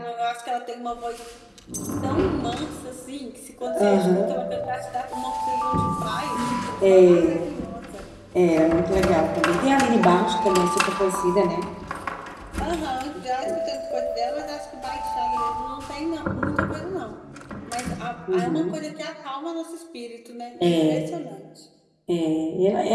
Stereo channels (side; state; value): both; identical; correlation 1.00